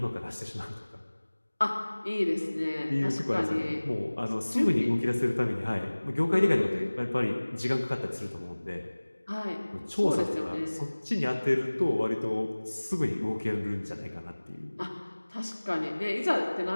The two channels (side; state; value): both; inverted; correlation -1.00